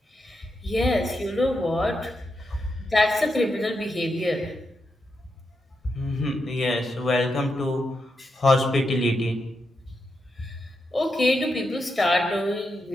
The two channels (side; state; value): both; normal; correlation 0.85